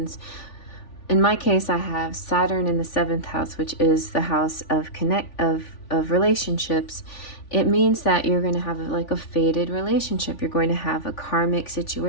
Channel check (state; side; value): late; right; 3.4 ms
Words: In my case, I have Saturn in the 7th house, which is the house of relationships. It means that you're going to have like a fated relationship. You're going to have a karmic